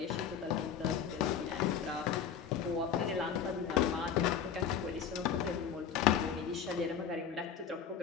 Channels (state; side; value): quieter; right; 7.7 dB